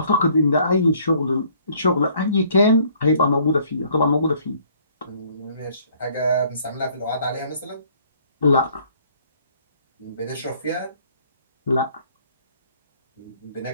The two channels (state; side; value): inverted; both; correlation -0.61